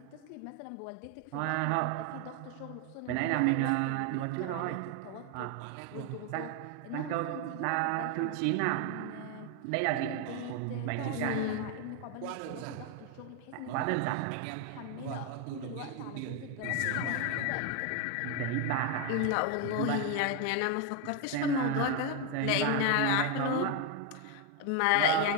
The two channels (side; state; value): both; different; correlation 0.01